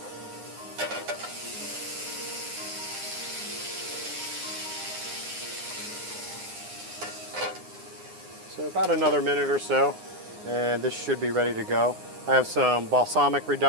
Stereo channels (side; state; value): left; late; 9.7 ms